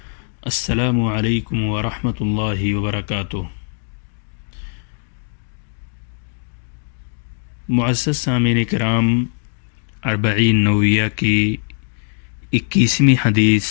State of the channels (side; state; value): right; silent; 66 dB below the other